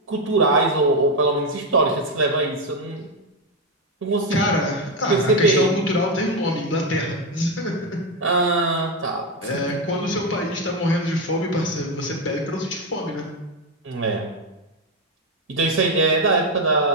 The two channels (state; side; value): normal; both; correlation 0.08